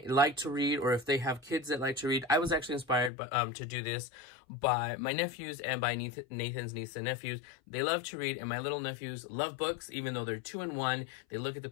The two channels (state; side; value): drops out; right; at 3.1 s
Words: like to read or if they have kids that like to read. I was actually inspired by, to do this by my nephews and by Nathan's niece and nephews. They love to read, and my little nephews love books, even though they're 2 and 1. They look at the